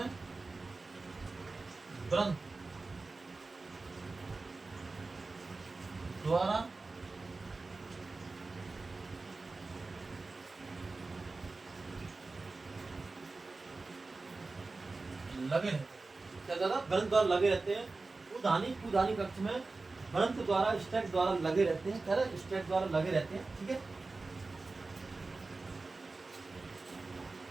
ब्रंथ द्वारा लगे रहते हैं। क्या ज्यादा ब्रंथ द्वारा लगे रहते हैं। पुधानी कक्ष में ब्रंथ द्वारा स्टैक द्वारा लगे रहते हैं। क्या स्टैक द्वारा लगे रहते हैं। ठीक है,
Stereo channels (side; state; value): left; quieter; 3.6 dB